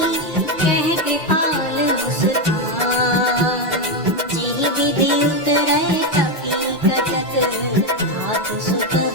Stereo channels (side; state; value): both; normal; correlation 0.07